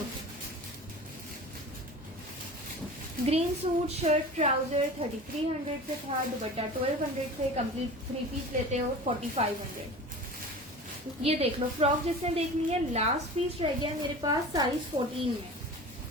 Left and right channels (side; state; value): both; normal; correlation 0.36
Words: ग्रीन सूट शर्ट ट्राउजर 3300 से था, दुपट्टा 1200 से, कंप्लीट 3 पीस लेते हो 4500। ये देख लो, फ्रॉक जिसने देखनी है लास्ट पीस रह गया मेरे पास साइज 14 में।